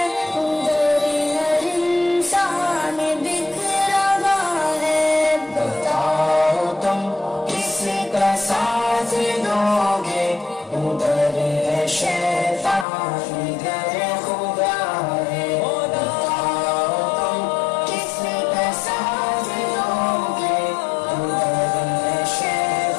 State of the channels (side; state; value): right; drops out; at 12.9 s